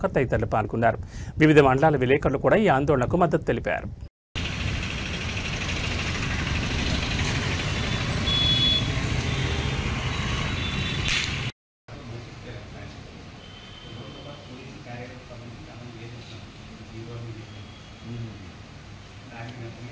తదితరులు పాల్గొన్నారు. వివిధ మండలాల విలేకరులు కూడా ఈ ఆందోళనకు మద్దతు తెలిపారు.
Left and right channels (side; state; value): both; identical; correlation 1.00